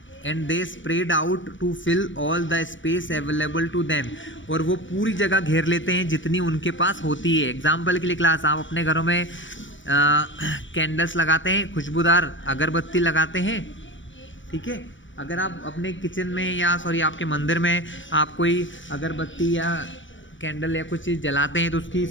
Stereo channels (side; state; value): right; late; 0.56 ms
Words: And they spread out to fill all the space available to them, और वो पूरी जगह घेर लेते हैं जितनी उनके पास होती है। एग्जाम्पल के लिए क्लास, आप अपने घरों में कैंडल्स लगाते हैं, खुशबूदार अगरबत्ती लगाते हैं, ठीक है। अगर आप अपने किचन में या आपके मंदिर में आप कोई अगरबत्ती या कैंडल या कुछ चीज़ जलाते हैं तो उसकी